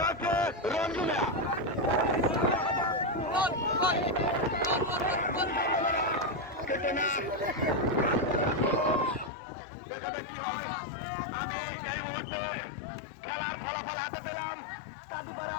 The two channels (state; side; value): drops out; right; at 9.3 s